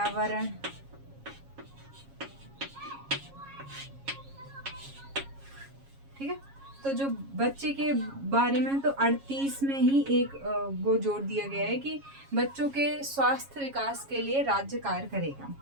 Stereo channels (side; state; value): left; late; 7.3 ms